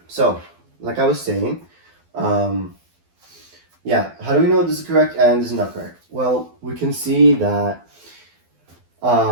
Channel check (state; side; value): late; left; 12 ms